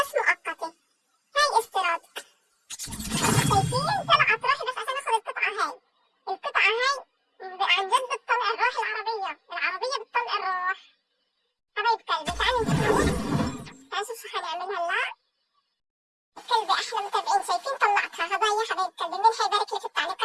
مؤقتة. هاي استيراد. شايفين طلعت روحي بس عشان اخذ القطعة هاي. القطعة هاي عن جد بتطلع الروح، العربية بتطلع الروح. حبايب قلبي تعالوا نشوف شو حنعمل هلا. قلبي احلى متابعين شايفين طلعتها هدايا. حبايب قلبي مين حيبارك لي في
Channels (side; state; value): both; identical; correlation 1.00